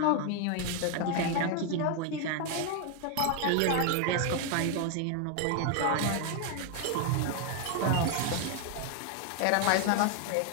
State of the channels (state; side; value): different; both; correlation 0.00